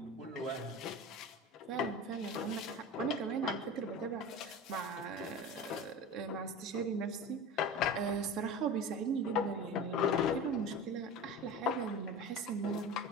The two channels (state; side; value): normal; both; correlation 0.31